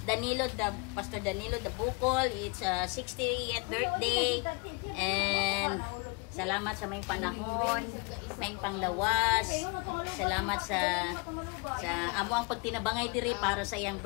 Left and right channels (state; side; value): quieter; right; 31.4 dB